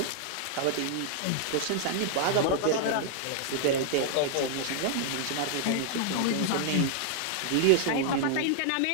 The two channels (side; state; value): both; different; correlation 0.00